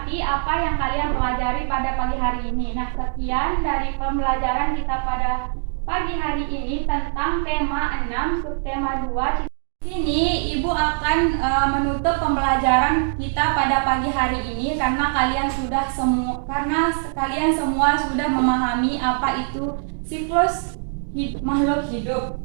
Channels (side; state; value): left; silent; digital silence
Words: apa yang kalian pelajari pada pagi hari ini. Nah, sekian dari pembelajaran kita pada pagi hari ini tentang tema 6 subtema 2. Di sini Ibu akan menutup pembelajaran kita pada pagi hari ini karena kalian semua sudah memahami apa itu siklus makhluk hidup.